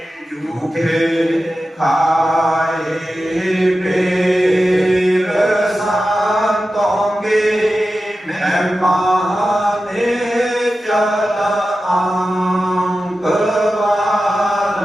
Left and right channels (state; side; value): normal; both; correlation 0.93